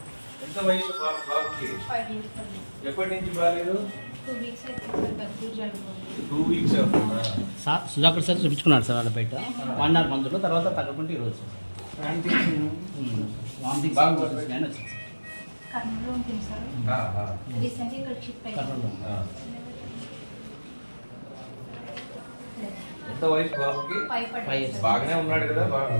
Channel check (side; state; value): both; inverted; correlation -1.00